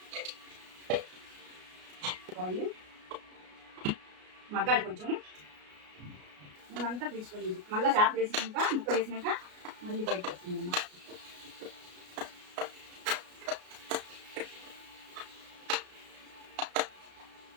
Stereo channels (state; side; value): late; left; 33 ms